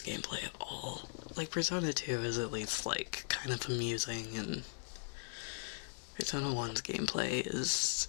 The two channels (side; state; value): right; silent; digital silence